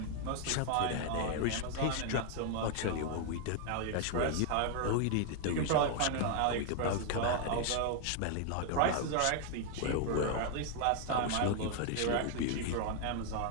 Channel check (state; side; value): different; both; correlation 0.00